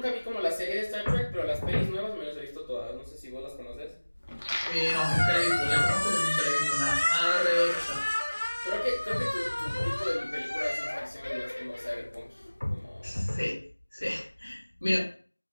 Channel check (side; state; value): both; inverted; correlation -1.00